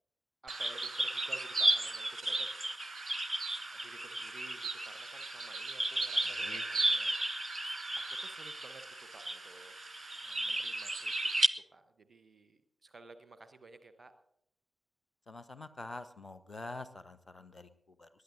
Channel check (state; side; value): normal; both; correlation 0.93